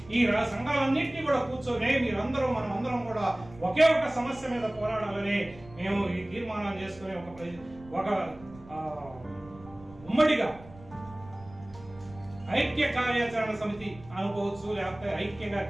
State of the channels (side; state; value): right; noise; rumble, 20 dB below the sound